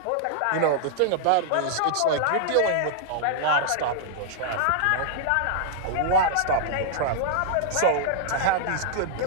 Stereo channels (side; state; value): both; different; correlation -0.01